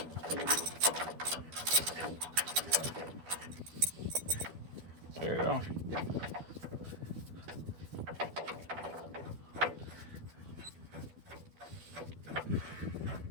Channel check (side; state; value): left; late; 12 ms